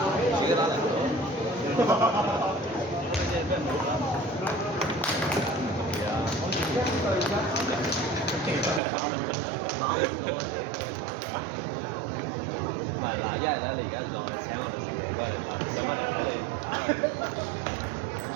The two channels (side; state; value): left; drops out; at 8.8 s